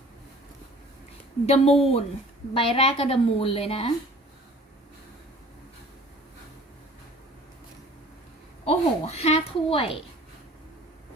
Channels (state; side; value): normal; both; correlation 0.48